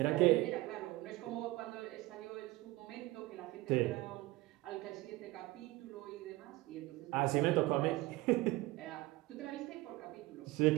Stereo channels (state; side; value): quieter; left; 19.5 dB